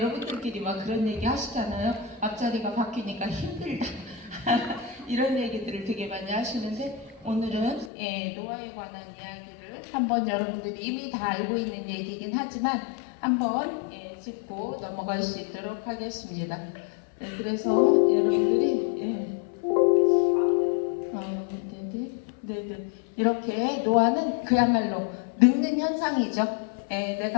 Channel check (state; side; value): drops out; right; at 7.9 s